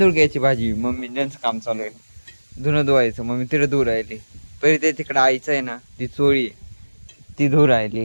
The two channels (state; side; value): inverted; both; correlation -1.00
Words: घ्यायची भाजी मम्मी त्यांचं काम चालू आहे. धुणं धुवायचं मम्मी तिकडे धुवू राहिली. पहिले ते तिकडं आईचं आहे ना ती चोळी ती धुवू